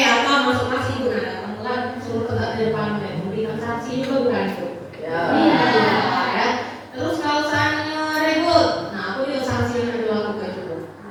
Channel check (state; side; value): identical; both; correlation 1.00